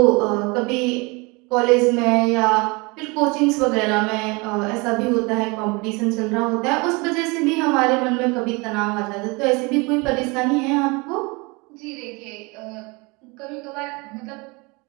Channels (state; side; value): quieter; left; 27.2 dB